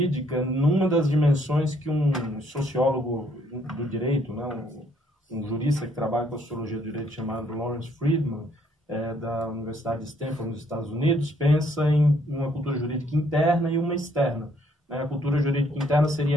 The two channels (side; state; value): both; normal; correlation 0.67